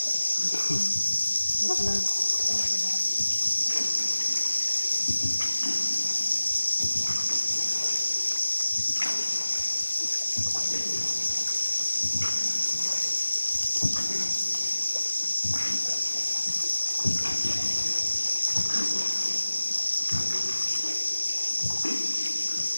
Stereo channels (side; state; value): both; inverted; correlation -1.00